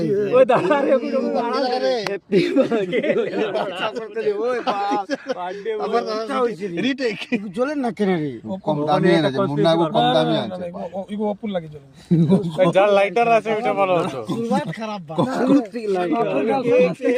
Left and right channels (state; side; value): identical; both; correlation 1.00